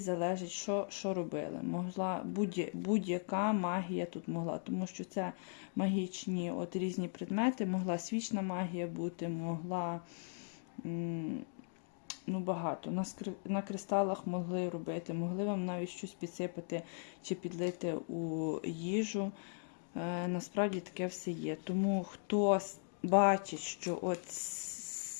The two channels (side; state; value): right; silent; 52 dB below the other